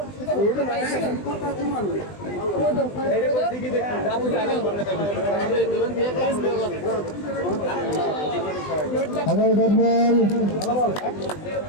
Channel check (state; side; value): late; right; 20 ms